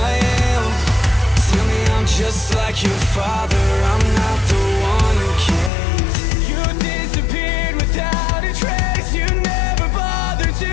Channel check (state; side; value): drops out; right; at 5.7 s